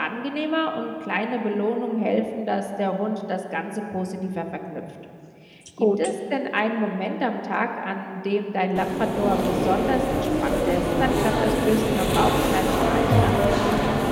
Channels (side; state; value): both; identical; correlation 1.00